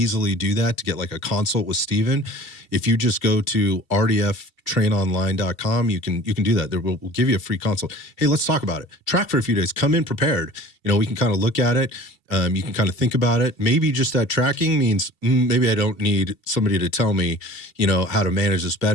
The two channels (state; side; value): late; right; 2.8 ms